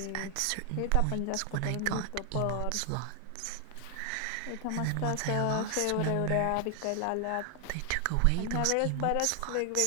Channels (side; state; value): both; different; correlation 0.00